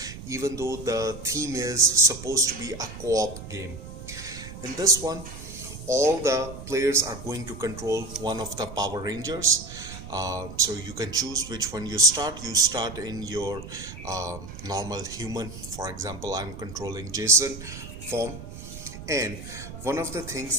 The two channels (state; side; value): noise; right; rumble, 12 dB below the sound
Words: even though the theme is supposed to be a co-op game. In this one, all the players are going to control one of the Power Rangers. So you can choose which one you start. You start in your normal human. For example, I'm controlling Jason form. And one of the